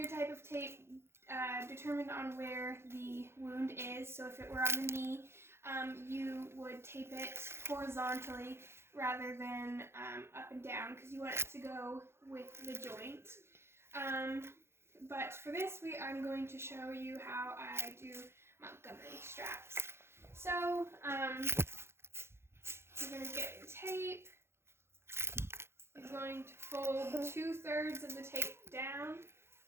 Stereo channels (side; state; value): left; late; 0.12 ms